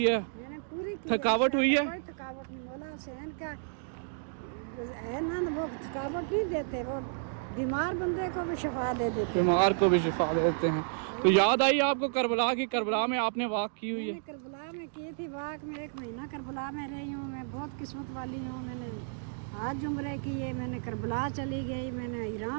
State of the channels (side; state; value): left; silent; digital silence